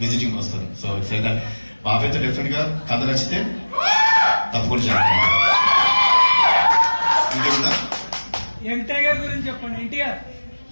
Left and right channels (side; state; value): both; inverted; correlation -1.00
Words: విజిటింగ్ వస్తాను. So it's like that. బాబాయ్తో డెఫినెట్ గా కథ నచ్చితే తప్పకుండా చేస్తాను. ఇంకేముందా? ఎన్టీఆర్ గురించి చెప్పండి. NTR